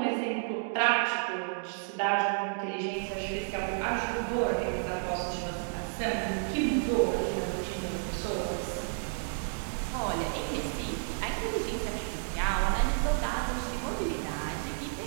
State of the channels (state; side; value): silent; left; digital silence